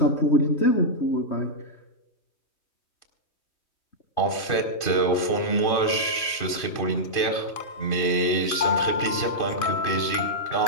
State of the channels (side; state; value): right; late; 2.5 ms